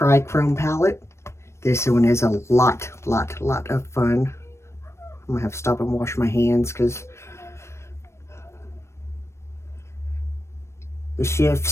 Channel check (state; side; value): late; right; 0.13 ms